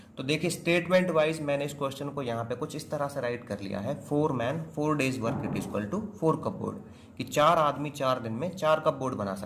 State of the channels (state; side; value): identical; both; correlation 1.00